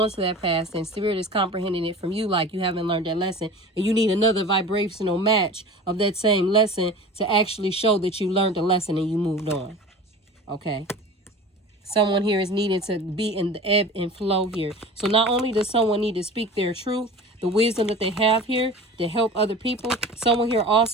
to that past, and spirit is comprehending it from you like you haven't learned that lesson, and you need another vibrational match of that same lesson to actually show that you learned the lesson and you moved on. Okay. Someone here is needed to be in the ebb and flow here. So not only does someone need to speak their truth, the wisdom that they have here to help other people, someone here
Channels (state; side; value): normal; both; correlation 0.37